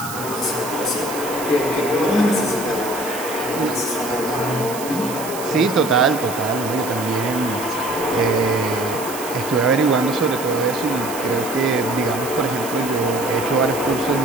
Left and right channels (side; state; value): right; noise; hiss, 11 dB below the sound